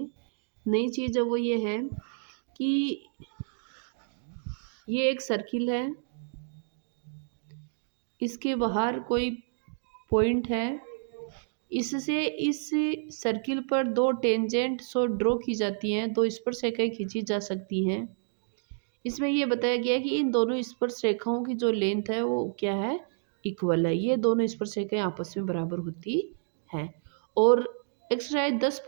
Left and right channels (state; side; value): silent; left; digital silence